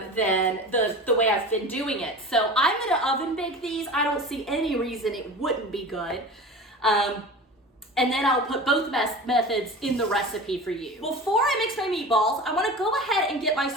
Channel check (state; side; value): normal; both; correlation 0.34